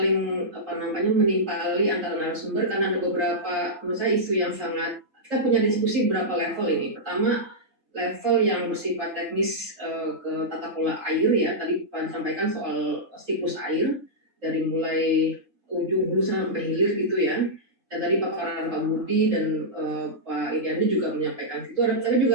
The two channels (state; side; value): late; left; 3.8 ms